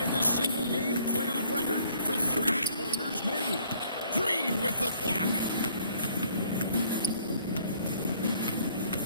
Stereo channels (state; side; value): inverted; both; correlation -0.61